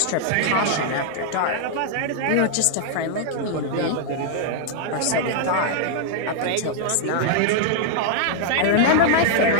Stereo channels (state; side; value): different; both; correlation -0.01